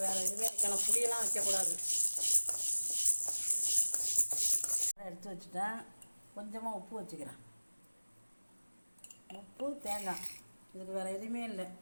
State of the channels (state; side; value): inverted; both; correlation -0.99